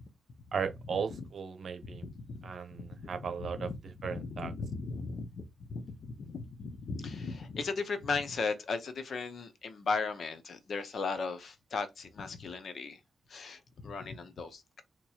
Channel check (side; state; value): both; normal; correlation 0.78